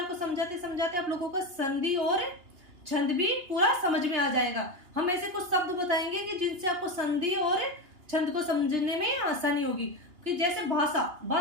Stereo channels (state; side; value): late; left; 2.9 ms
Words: को समझाते समझाते आप लोगों को संधि और छंद भी पूरा समझ में आ जाएगा। हम ऐसे कुछ शब्द बताएंगे कि जिनसे आपको संधि और छंद को समझने में आसानी होगी। कि जैसे भाषा